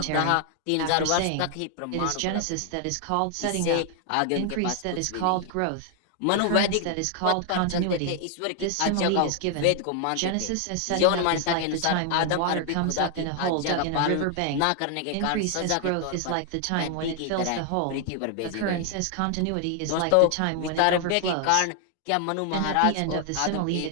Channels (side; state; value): both; different; correlation 0.00